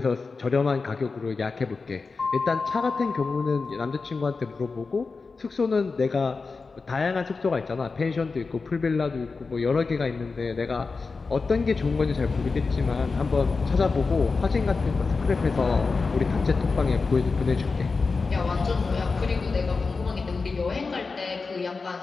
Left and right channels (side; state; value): right; quieter; 4.3 dB